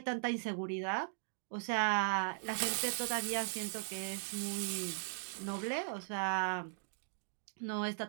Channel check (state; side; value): silent; left; digital silence